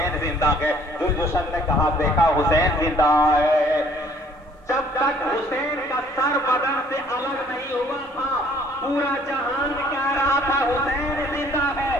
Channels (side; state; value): both; normal; correlation 0.58